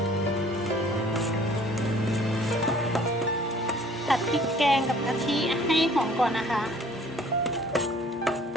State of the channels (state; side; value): normal; both; correlation 0.54